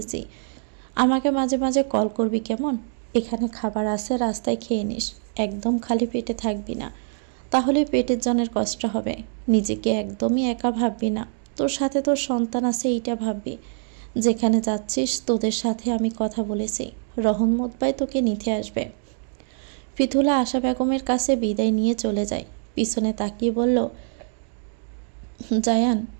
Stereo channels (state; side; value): silent; left; digital silence